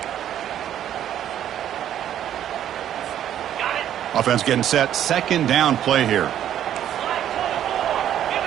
Offense getting set. 2nd down play here.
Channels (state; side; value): quieter; left; 10.8 dB